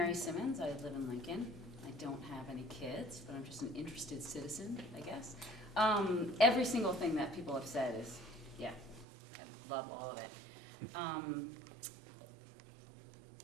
Simmons. I live in Lincoln. I don't have any kids, but I'm just an interested citizen, I guess. Every single thing that people have said is, yeah, I love all of it.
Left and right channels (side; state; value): left; drops out; at 9.1 s